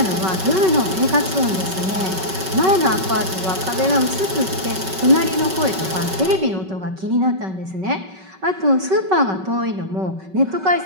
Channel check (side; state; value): left; late; 5.3 ms